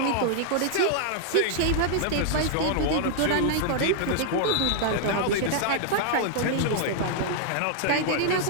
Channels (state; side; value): different; both; correlation -0.01